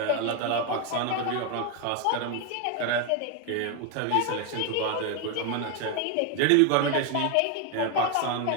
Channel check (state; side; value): different; both; correlation 0.01